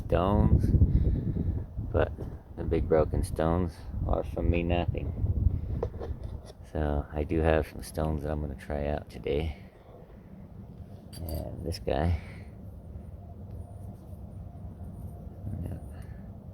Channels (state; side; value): identical; both; correlation 1.00